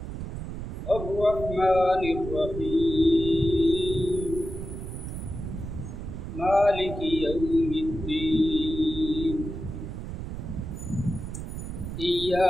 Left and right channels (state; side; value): noise; right; rumble, 7 dB below the sound